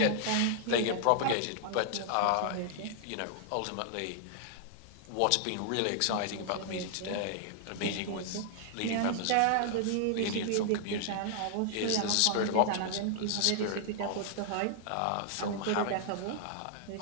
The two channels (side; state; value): both; different; correlation -0.01